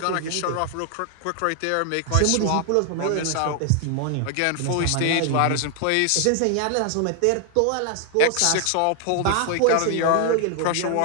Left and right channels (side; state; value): both; different; correlation 0.00